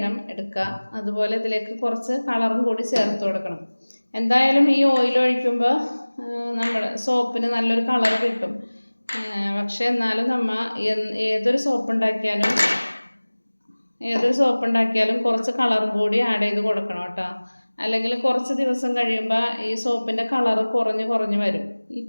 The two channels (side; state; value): both; inverted; correlation -1.00